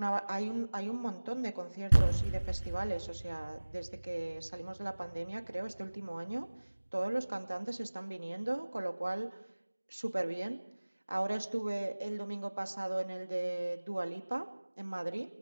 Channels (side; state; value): both; inverted; correlation -1.00